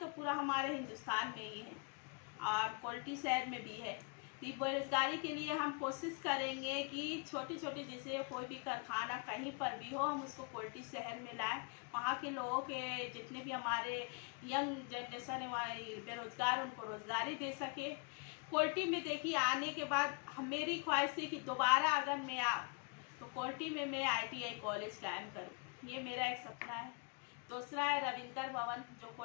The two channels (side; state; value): right; quieter; 33.9 dB